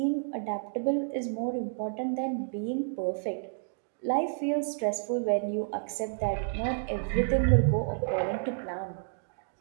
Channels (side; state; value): left; silent; digital silence